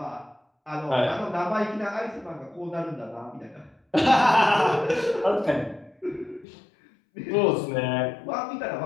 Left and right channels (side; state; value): right; drops out; at 6.5 s